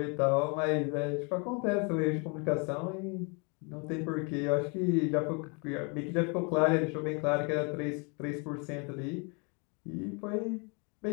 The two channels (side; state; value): right; quieter; 33.7 dB